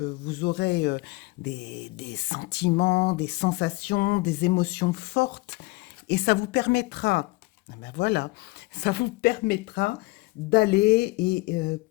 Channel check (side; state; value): right; quieter; 23.3 dB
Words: aurez des sentiments, des sensations, des émotions fortes, et ça vous permettra, ah ben voilà, ça vous permettra d'aller